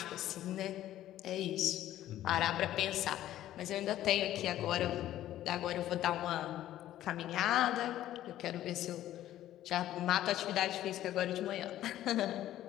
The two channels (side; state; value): right; quieter; 13.1 dB